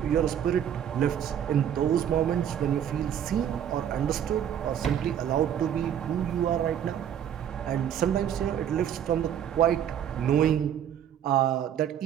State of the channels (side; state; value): left; quieter; 9.6 dB